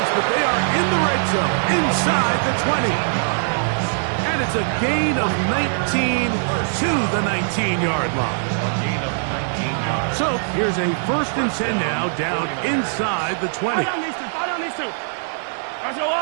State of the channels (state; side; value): silent; left; digital silence